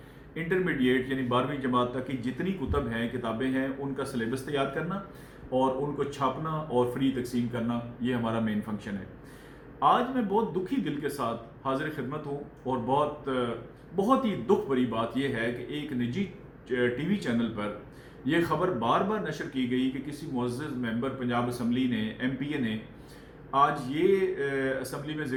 انٹرمیڈیٹ یعنی 12ویں جماعت تک کی جتنی کتب ہیں، کتابیں ہیں، ان کا سلیبس تیار کرنا اور ان کو چھاپنا اور فری تقسیم کرنا، یہ ہمارا مین فنکشن ہے۔ آج میں بہت دکھی دل کے ساتھ حاضر خدمت ہوں اور بہت ہی دکھ بھری بات یہ ہے کہ ایک نجی ٹی وی چینل پر یہ خبر بار بار نشر کی گئی کہ کسی معزز ممبر پنجاب اسمبلی نے، ایم پی اے نے آج یہ اسمبلی میں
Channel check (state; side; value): identical; both; correlation 1.00